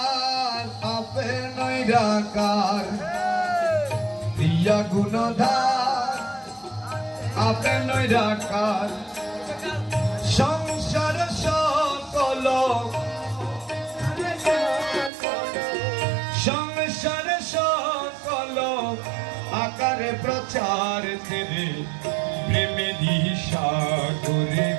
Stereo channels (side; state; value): left; drops out; at 15.1 s